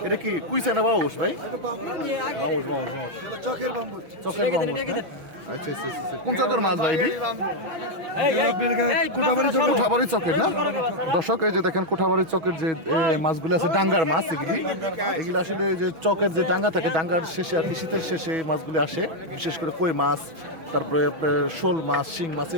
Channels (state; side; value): late; left; 6.2 ms